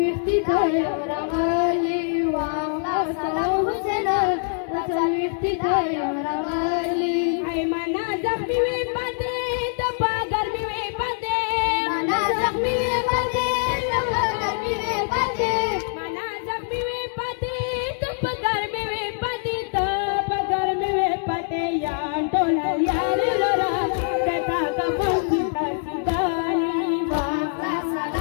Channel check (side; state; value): right; silent; digital silence